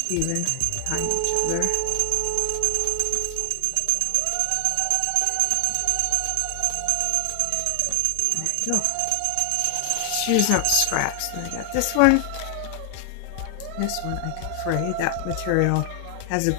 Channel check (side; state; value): both; different; correlation 0.00